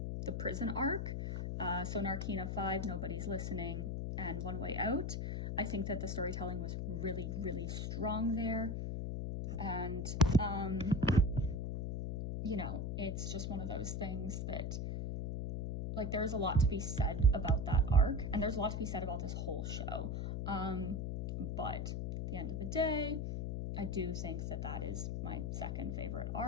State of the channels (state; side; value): noise; left; hum, 2 dB below the sound